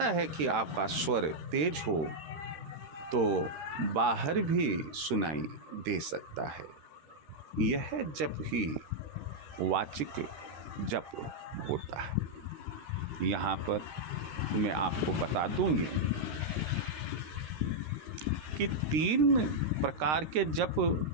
है कि आपका स्वर तेज हो तो बाहर भी सुनाई दे सकता है। यह जप ही वाचिक जप होता है। यहाँ पर मैं आपको बता दूंगी कि 3 प्रकार के जप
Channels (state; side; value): late; left; 13 ms